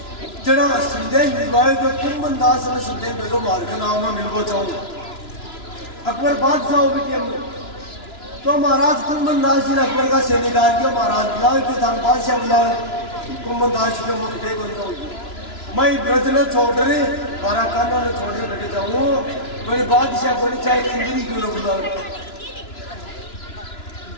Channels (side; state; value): right; late; 2.9 ms